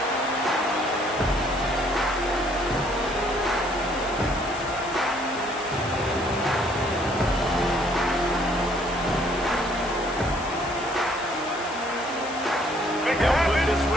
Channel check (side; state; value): left; noise; hiss, 16 dB below the sound